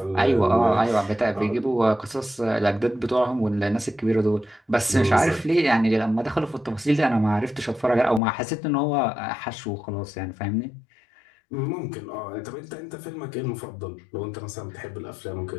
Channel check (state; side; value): drops out; right; at 8.2 s